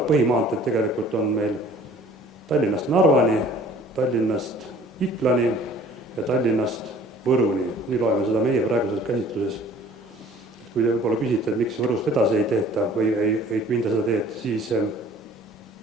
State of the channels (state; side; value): normal; both; correlation 0.52